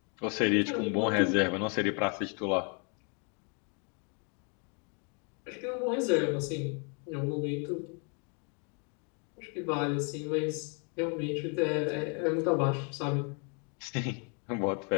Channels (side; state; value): right; quieter; 37.1 dB